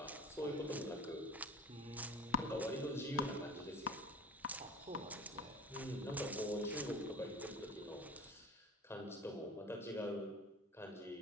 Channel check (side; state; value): both; normal; correlation 0.39